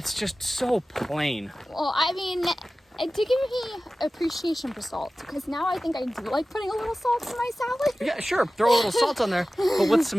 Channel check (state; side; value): normal; both; correlation 0.96